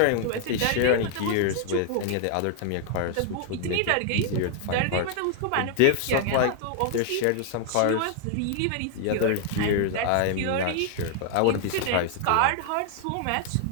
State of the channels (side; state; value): both; different; correlation 0.00